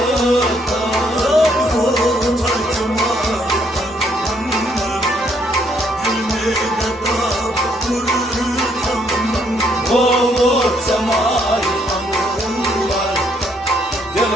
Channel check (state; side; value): normal; both; correlation 0.70